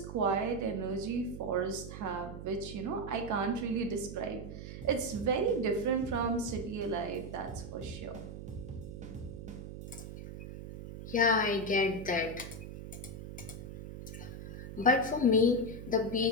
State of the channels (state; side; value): noise; right; hum, 10 dB below the sound